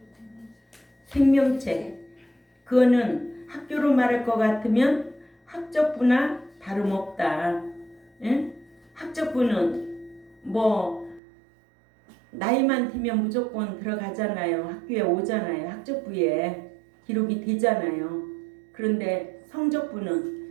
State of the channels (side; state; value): left; drops out; at 11.2 s